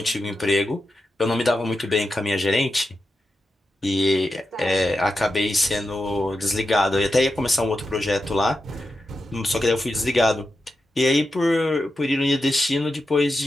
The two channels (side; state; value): both; normal; correlation 0.89